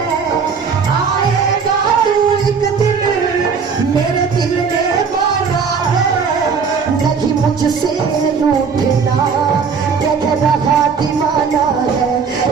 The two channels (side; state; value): left; quieter; 5.8 dB